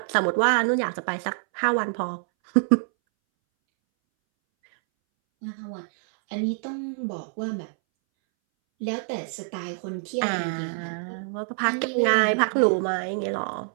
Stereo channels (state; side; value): silent; left; 61 dB below the other